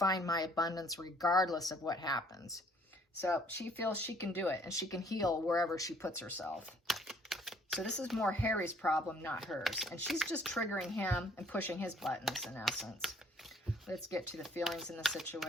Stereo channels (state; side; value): normal; both; correlation 0.61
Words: my abundance regardless of what happens. So she feels she can do it, and she can heal wherever she puts herself. So this is more Harry's problem, not hers. And she's just triggering him and pushing his buttons in essence. Let's get to the feelings in the